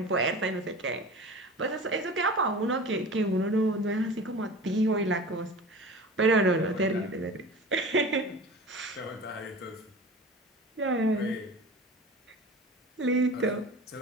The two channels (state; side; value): normal; both; correlation 0.36